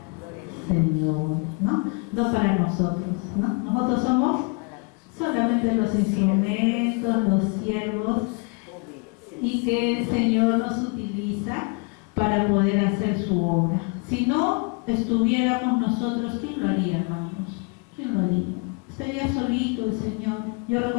Señor, ¿no? No para nosotros, ¿no? Nosotros somos solamente los instrumentos, los siervos, y que el Señor nos utiliza para poder hacer su obra. Si no estuviéramos nosotros, ¿quién lo haría, hermanos? ¿Quién lo haría? Estaría solito el Señor. Yo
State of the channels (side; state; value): right; quieter; 31.1 dB